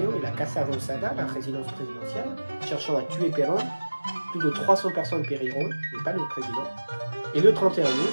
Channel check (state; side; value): inverted; both; correlation -1.00